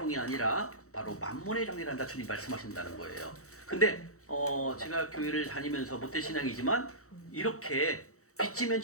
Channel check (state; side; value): late; right; 0.64 ms